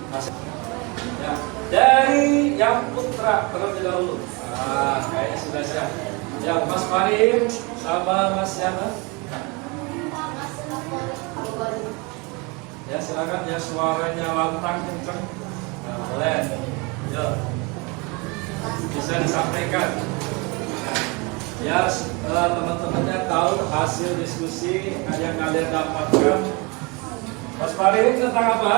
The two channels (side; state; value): left; quieter; 28.5 dB